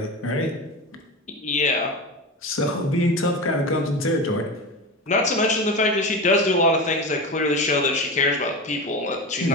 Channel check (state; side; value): normal; both; correlation 0.24